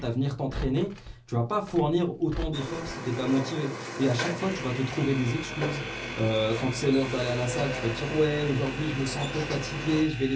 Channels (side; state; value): both; identical; correlation 1.00